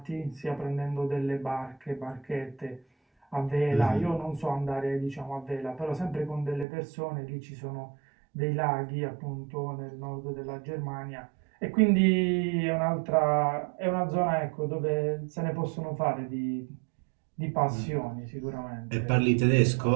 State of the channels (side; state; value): left; drops out; at 6.7 s